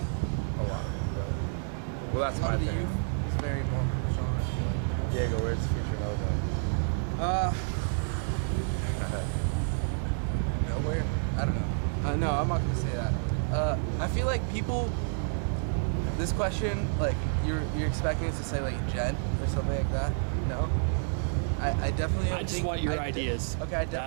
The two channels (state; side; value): silent; left; 58 dB below the other